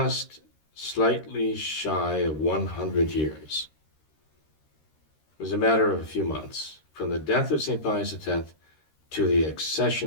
slightly shy of 100 years? It was a matter of a few months. From the death of St. Pius X to the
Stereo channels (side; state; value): right; late; 13 ms